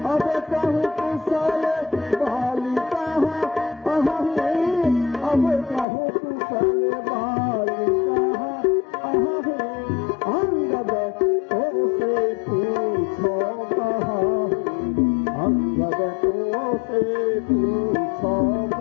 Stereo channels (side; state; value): right; drops out; at 5.9 s